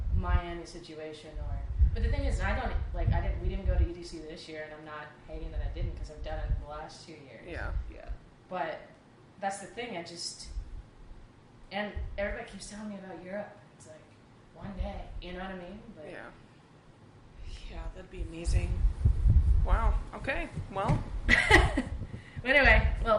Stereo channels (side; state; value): both; identical; correlation 1.00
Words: Miami situation but the thing is, we didn't go to EDC this year, and I'm not hating that I didn't, because I've done it the last 2 years. Yeah. But that's the thing, and everybody keeps telling me about Europe. It's like, one day, you know what I mean? But yeah. Yeah, that'd be amazing. Wow. Okay. Well. Anyway,